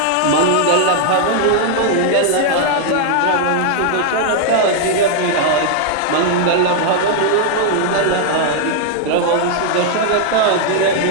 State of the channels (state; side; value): different; both; correlation -0.01